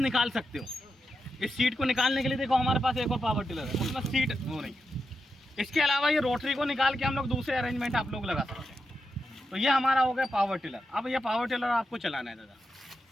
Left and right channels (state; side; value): normal; both; correlation 0.87